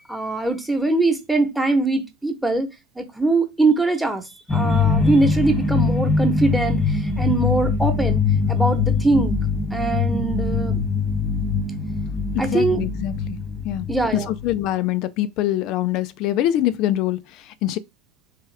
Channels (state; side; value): normal; both; correlation 0.59